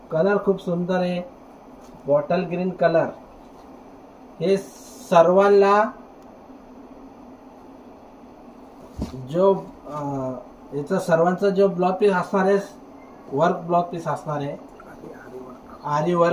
कलर खूप सुंदर आहे, बॉटल ग्रीन कलर. हे सर्वांना जो याचा सर्वांचा जो ब्लाउज पीस असणार आहे वर्क ब्लाउज पीस असणार आहे, आरी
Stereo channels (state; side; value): identical; both; correlation 1.00